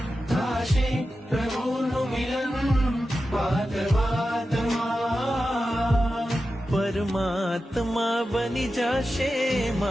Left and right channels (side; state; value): both; normal; correlation 0.92